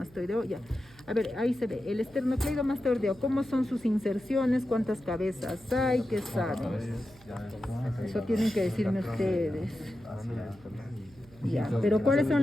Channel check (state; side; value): noise; right; hum, 25 dB below the sound